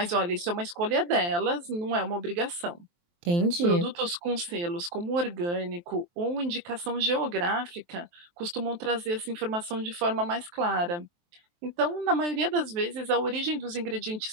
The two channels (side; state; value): left; late; 23 ms